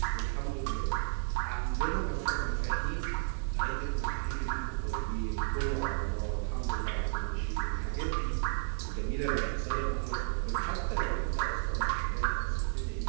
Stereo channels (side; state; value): left; silent; digital silence